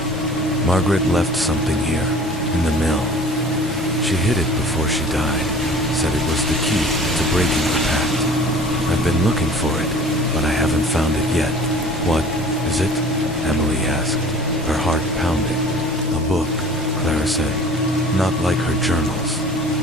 Margaret left something here, in the mill. She hid it before she died, said it was the key to breaking the pact. I've been looking for it, but I haven't found it yet. What is it? Emily asked, her heart pounding. A book, Clara said, not like her journals.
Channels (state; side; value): normal; both; correlation 0.46